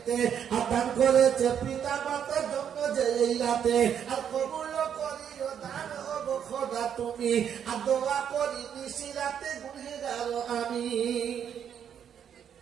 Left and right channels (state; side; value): quieter; left; 8.6 dB